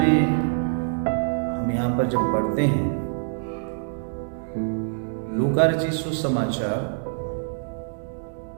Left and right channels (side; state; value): left; silent; digital silence